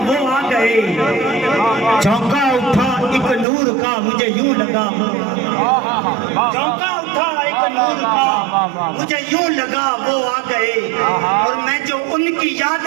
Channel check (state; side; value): drops out; left; at 3.5 s